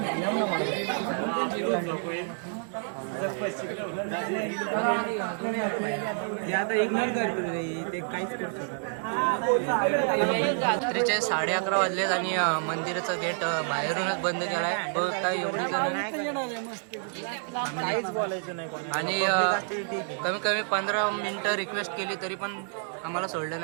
ते आता इग्नोर करते ते काहीच करू शकत. रात्रीचे 11:30 वाजलेत आणि मंदिराचा गेट बाहेरूनच बंद केलाय. बघता एवढी जण फॅमिली आणि कमी कमी 15 मिनिटं रिक्वेस्ट केली तरी पण आम्हाला सोडलं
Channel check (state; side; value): silent; left; 59 dB below the other